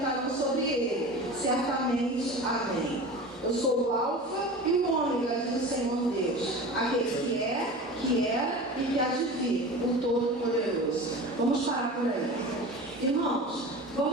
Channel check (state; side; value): normal; both; correlation 0.34